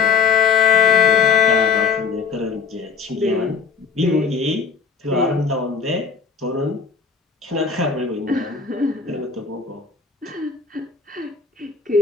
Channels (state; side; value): quieter; right; 5.6 dB